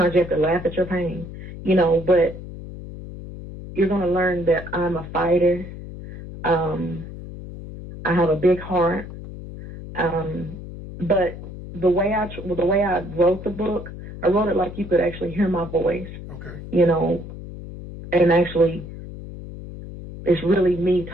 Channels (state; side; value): noise; left; hum, 12 dB below the sound